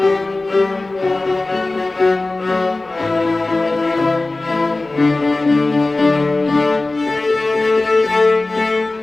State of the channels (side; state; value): right; quieter; 3.1 dB